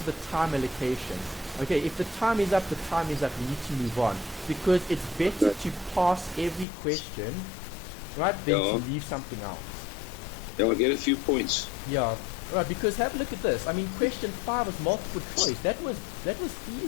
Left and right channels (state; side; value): drops out; right; at 6.7 s